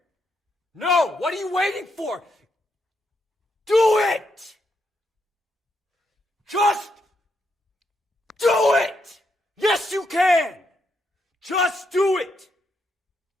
No, what are you waiting for? Do it! Just do it! Yes, you can! Just do it!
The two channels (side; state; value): both; normal; correlation 0.79